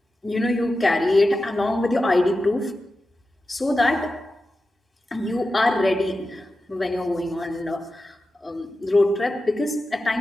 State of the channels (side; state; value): both; normal; correlation 0.92